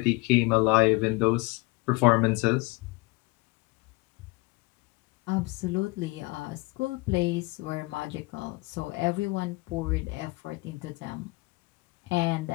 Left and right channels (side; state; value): right; quieter; 24.4 dB